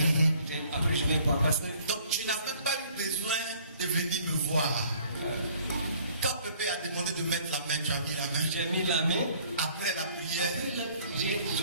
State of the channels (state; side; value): inverted; both; correlation -0.57